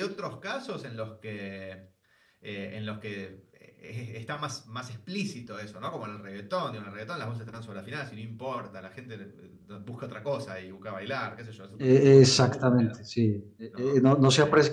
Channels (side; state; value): both; identical; correlation 1.00